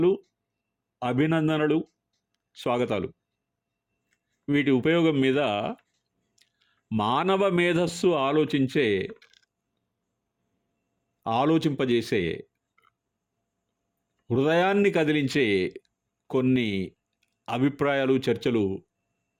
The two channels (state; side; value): identical; both; correlation 1.00